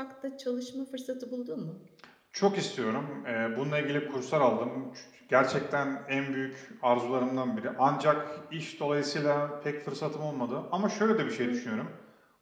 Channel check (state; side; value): identical; both; correlation 1.00